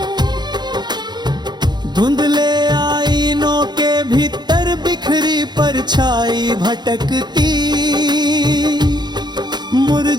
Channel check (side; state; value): left; late; 0.21 ms